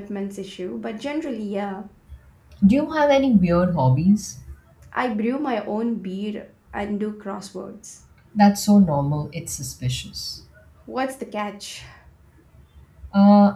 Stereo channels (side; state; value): both; identical; correlation 1.00